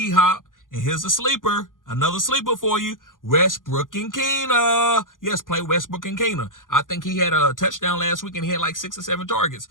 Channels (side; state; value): right; late; 0.89 ms